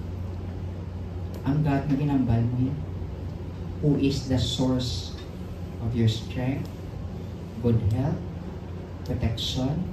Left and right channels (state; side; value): identical; both; correlation 1.00